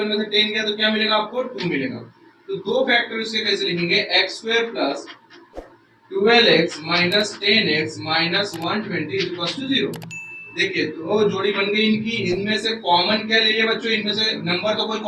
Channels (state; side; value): identical; both; correlation 1.00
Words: में से 10 गया तो क्या मिलेगा आपको 2 मिलेगा, तो दो फैक्टर इसके कैसे लिखेंगे x square plus 12x minus 10x minus 120 is equals to 0। देखिए तो जोड़ी बन गई इनकी, इनमें से कॉमन क्या ले लिया बच्चों, इनमें से नंबर तो कोई